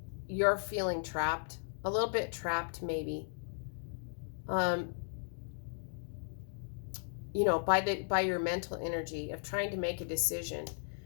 you're feeling trapped, a little bit trapped maybe. You know, by your mental energy of trying to make a decision.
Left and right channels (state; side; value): silent; right; digital silence